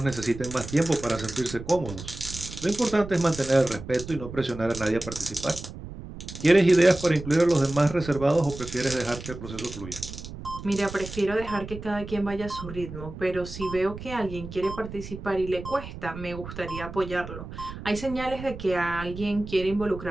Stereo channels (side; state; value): right; noise; rumble, 11 dB below the sound